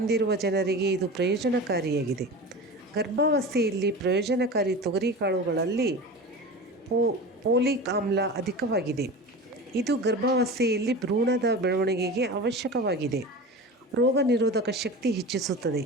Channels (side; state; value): both; normal; correlation 0.31